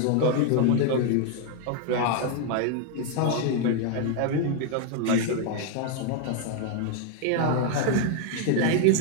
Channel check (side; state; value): both; different; correlation 0.01